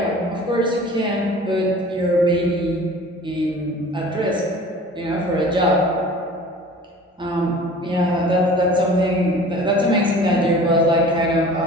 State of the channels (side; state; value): both; normal; correlation 0.44